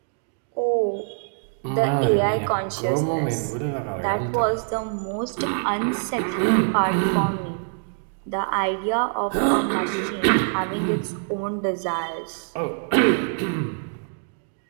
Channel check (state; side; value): silent; left; digital silence